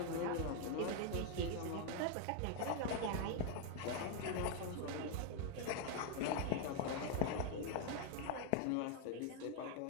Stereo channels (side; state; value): both; different; correlation 0.00